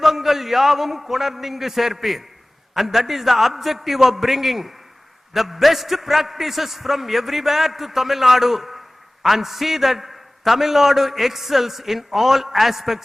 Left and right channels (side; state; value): both; normal; correlation 0.98